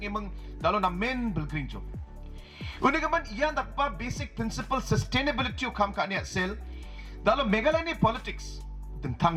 imang dalo na main belgring jo. Unigaman iyan dakpa basic principle sustainability o kam ka niya sel. Dalo Meghalaya ni politics tentang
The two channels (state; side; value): identical; both; correlation 1.00